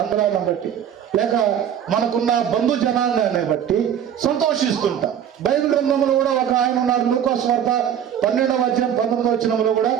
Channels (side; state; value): left; quieter; 9.3 dB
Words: బట్టి, లేక మనకున్న బంధు జనాంగాన్ని బట్టి సంతోషిస్తుంటాం. బైబిల్ గ్రంథంలో కూడా ఒక ఆయన ఉన్నారు, లూకా సువార్త 12వ అధ్యాయం 19వ వచనంలో కూడా